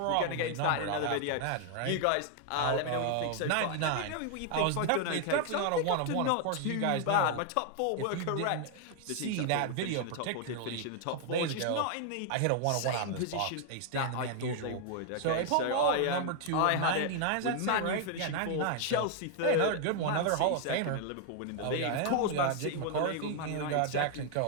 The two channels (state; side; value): different; both; correlation 0.00